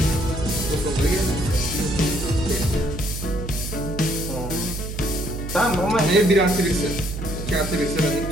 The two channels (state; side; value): noise; right; hum, 7 dB below the sound